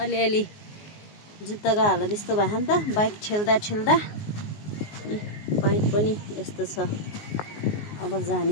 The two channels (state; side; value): late; right; 19 ms